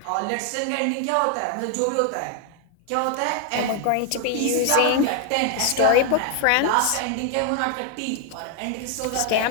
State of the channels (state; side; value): different; both; correlation 0.00